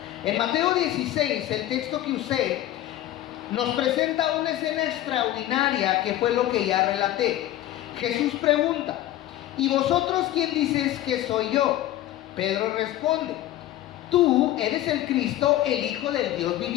En Mateo 16, el texto que usé, nos presenta una escena extraordinaria que fue lo que ya relaté. Jesús pregunta: ¿y vosotros quién dices que soy yo? Pedro responde: tú eres el Cristo, el Hijo del Dios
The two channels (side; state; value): right; quieter; 14.0 dB